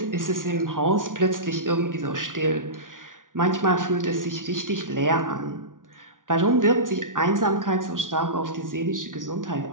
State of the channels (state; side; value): late; left; 0.88 ms